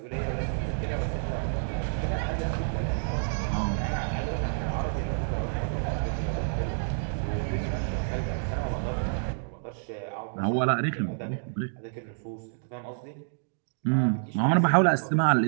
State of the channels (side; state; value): left; silent; digital silence